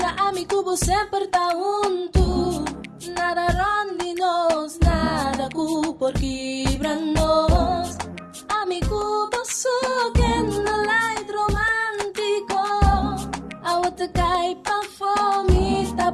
amigo você sempre tá junto. Nada ronde-nos, nada por quebrar-nos. Amigo você que não é romântico. A outra cai pra fome, tá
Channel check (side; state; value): both; identical; correlation 1.00